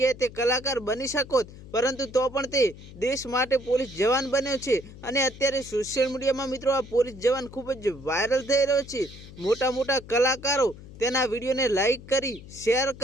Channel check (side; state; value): left; noise; hum, 17 dB below the sound